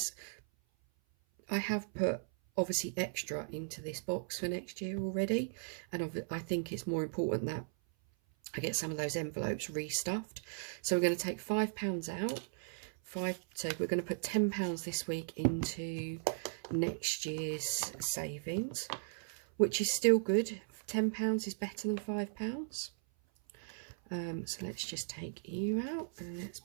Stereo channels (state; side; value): silent; left; 53 dB below the other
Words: I have put obviously extra into this box for next year already, and I think it's more important that I get some of those envelopes restuffed. So we're going to take £5 out. So we're going to put £10 this week into next year's savings, which is still good. £10 is better than £5. So let's just take you out and let's